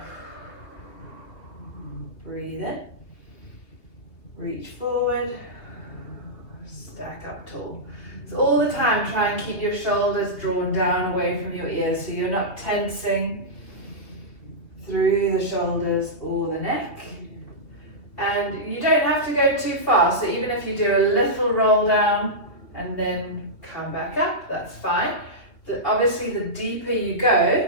Breathe in. Reach forward. Stack up tall. So all the time try and keep your shoulders drawn down away from your ears so you're not tensing through the shoulders or the neck. And you don't have to go too far, so even if you do a little roll down and then come back up, that's fine. Obviously the deeper you go,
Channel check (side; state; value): right; late; 2.6 ms